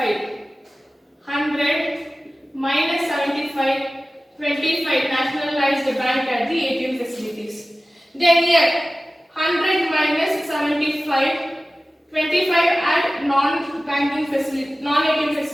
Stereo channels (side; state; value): both; normal; correlation 0.96